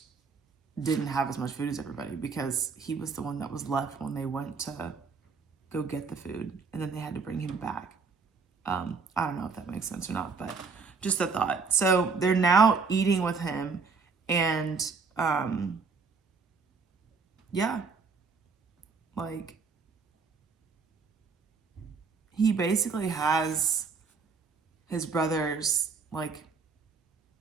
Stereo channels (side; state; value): left; quieter; 4.9 dB